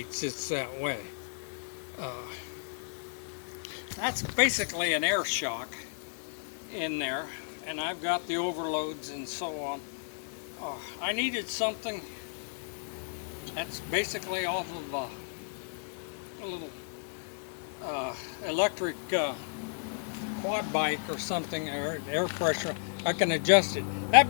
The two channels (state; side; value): silent; right; digital silence